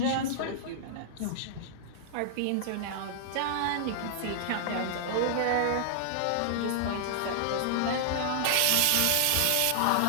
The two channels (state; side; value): different; both; correlation -0.01